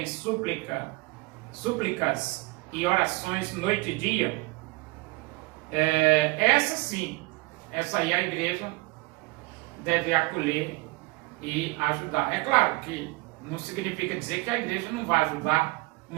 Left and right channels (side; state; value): left; quieter; 23.9 dB